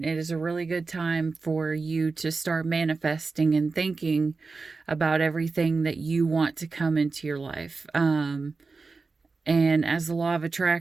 It is a really good time for you to start manifesting and thinking about everything that you want to come into your life. And as the law of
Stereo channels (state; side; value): quieter; left; 4.2 dB